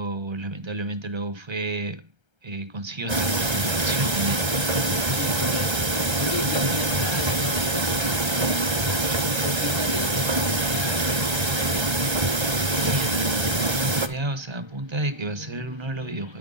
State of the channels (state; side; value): late; left; 1.3 ms